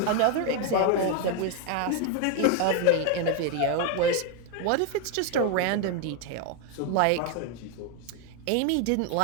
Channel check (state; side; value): different; both; correlation 0.01